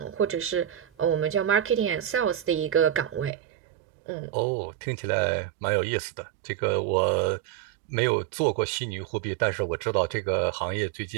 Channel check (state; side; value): drops out; left; at 3.3 s